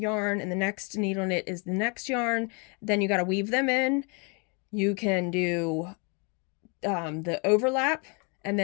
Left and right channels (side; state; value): right; quieter; 33.6 dB